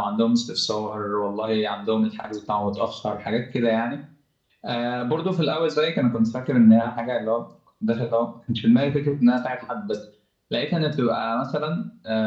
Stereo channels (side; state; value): both; identical; correlation 1.00